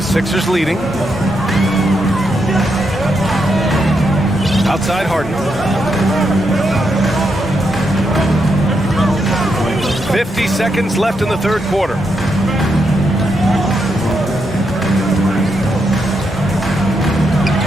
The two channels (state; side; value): normal; both; correlation 0.81